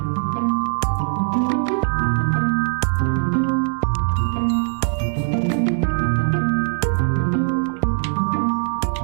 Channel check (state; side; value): silent; left; digital silence